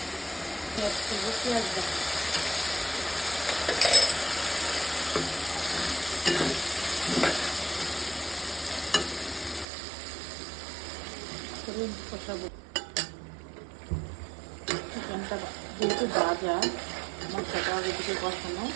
পেঁয়াজ করবো, পেঁয়াজ কষাবো। চিকেনটা যেহেতু ভাজা, মশলাটা আগে থেকে কষানো,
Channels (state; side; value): drops out; left; at 9.7 s